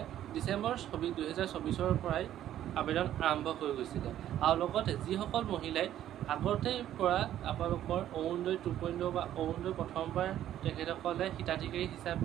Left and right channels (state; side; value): quieter; left; 11.9 dB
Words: ডিচেম্বৰ 2024 পৰাই আবেদন আৰম্ভ হৈ গৈছিলে। আৰু লগতে যিসকল মহিলাই আগতেই পৰা আপোনালোকৰ অৰুণোদয় 2.0 বা অৰুণোদয় প্ৰথমবাৰ তেখেতসকলে হিতাধিকাৰী